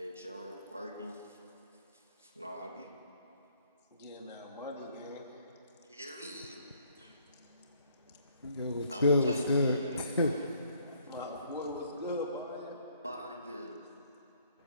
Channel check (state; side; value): inverted; both; correlation -0.64